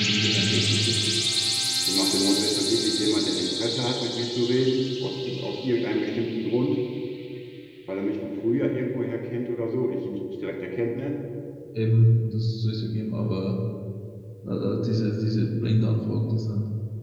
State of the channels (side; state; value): both; identical; correlation 1.00